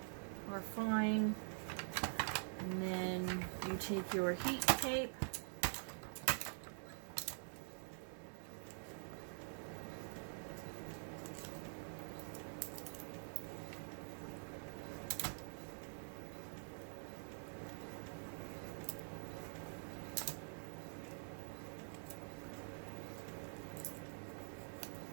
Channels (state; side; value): silent; left; digital silence